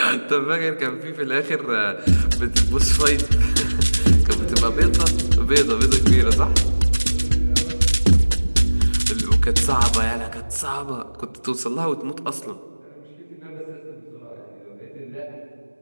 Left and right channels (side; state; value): both; inverted; correlation -1.00